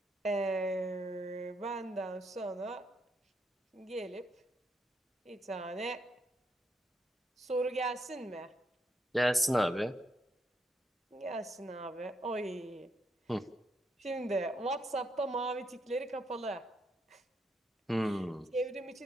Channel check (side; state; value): both; normal; correlation 0.78